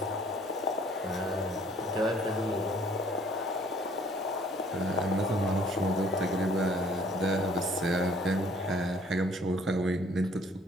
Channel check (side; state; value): both; normal; correlation 0.58